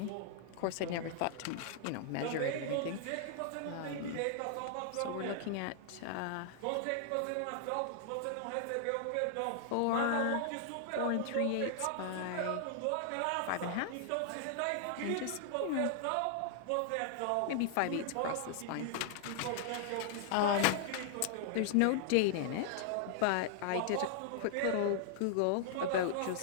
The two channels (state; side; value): different; both; correlation -0.01